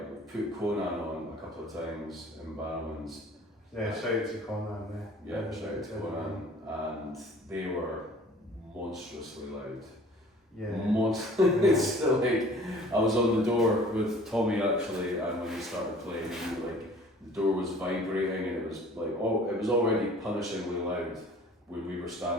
we put Conan on a couple of times in Barrowman's. Yeah, shout out to Conan there. Yeah, shout out to Conan, and they were monstrously loud. Yeah. It's still like, I was on the door with Tommy actually, and when he started playing, like the door was vibrating, and it was like, it was already punishingly loud when we were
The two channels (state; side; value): normal; both; correlation 0.49